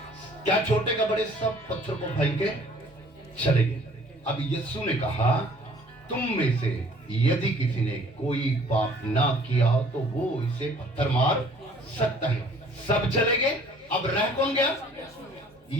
क्या छोटे का बड़े सब पत्थर को फेंक के चले गए। अब यीशु ने कहा, तुम में से यदि किसी ने कोई पाप ना किया तो वो इसे पत्थर मार सकता है। सब चले गए। अब रह कौन गया?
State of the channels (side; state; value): both; normal; correlation 0.55